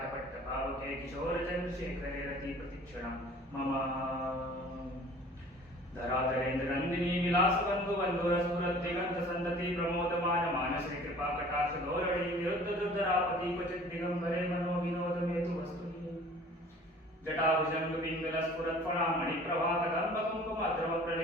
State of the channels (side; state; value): both; normal; correlation 0.48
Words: किशोरचन्द्रशेखरे रतिप्रतिक्षणं मम धराधरेन्द्रनन्दिनी विलासबन्धुबन्धुरस्फुरद्दिगन्तसन्तति प्रमोदमान मानसे कृपाकटाक्षधोरणी विरुद्धदुर्धरापति क्वचित् दिगम्बरे मनोविनोदमेतु वस्तु